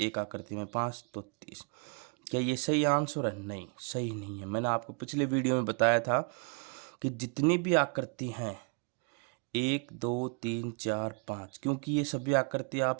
आकृति में 5, तो 30। क्या ये सही आंसर है? नहीं, सही नहीं है। मैंने आपको पिछले वीडियो में बताया था कि जितनी भी आकृति हैं 1 2 3 4 5, क्योंकि ये सभी आकृति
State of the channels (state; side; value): quieter; left; 35.7 dB